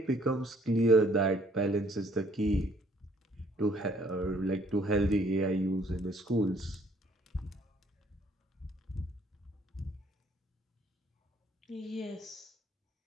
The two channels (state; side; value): normal; both; correlation 0.63